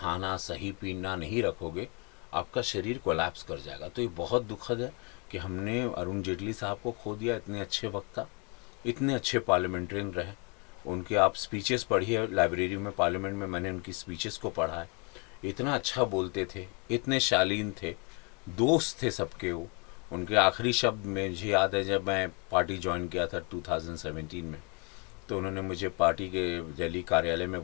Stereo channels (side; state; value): right; quieter; 33.3 dB